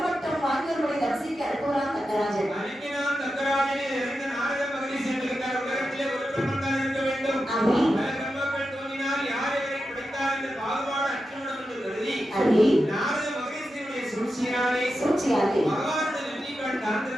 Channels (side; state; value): both; normal; correlation 0.90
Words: வாங்கியவர்களை தரிசிக்க அனுப்புகிறான் தக்கராஜன். சூழ்ச்சியாலே